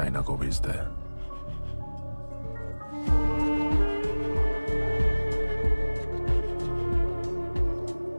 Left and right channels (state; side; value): inverted; both; correlation -1.00